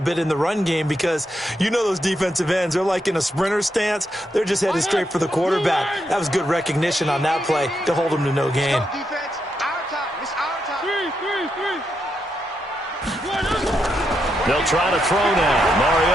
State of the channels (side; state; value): both; normal; correlation 0.82